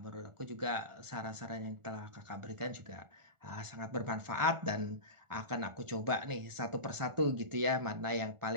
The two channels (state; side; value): late; left; 1.4 ms